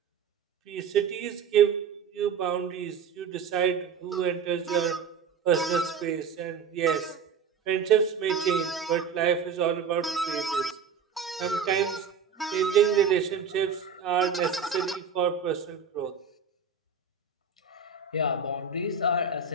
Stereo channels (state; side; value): quieter; left; 6.0 dB